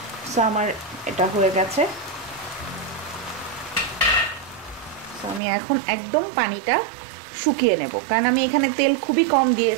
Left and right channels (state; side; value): drops out; left; at 5.4 s